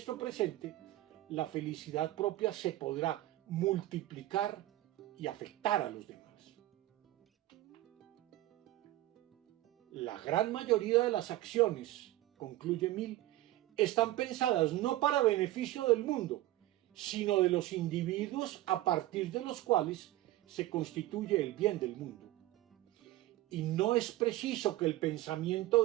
presente, la felicidad propia se podrá multiplicar y afectar a los demás. La gran mayoría de las acciones, concluye Mill, están pensadas no para beneficio del mundo, sino de los individuos a partir de los cuales se constituye el bien del mundo. Y no es preciso que el pensamiento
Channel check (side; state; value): left; quieter; 16.1 dB